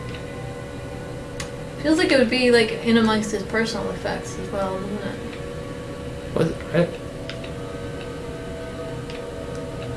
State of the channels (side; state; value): both; identical; correlation 1.00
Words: Feels like it would be like in amongst his personal effects as well, doesn't it? What?